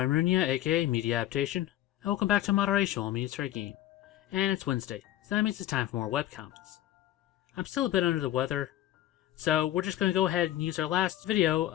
Runia, aka Media Adaptation, and welcome back to Moderation while Minutes for a Game. And it's Wednesday, so that means it's time for more webcomics. I'm still a bit under the weather, so we're just going to go ahead and use our last video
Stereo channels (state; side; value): quieter; right; 13.6 dB